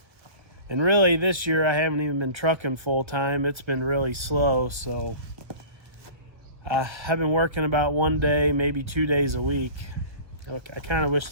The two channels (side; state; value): left; late; 1.3 ms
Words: And really this year I haven't even been trucking full time. It's been really slow, so I've been working about 1 day, maybe 2 days a week. I kind of wish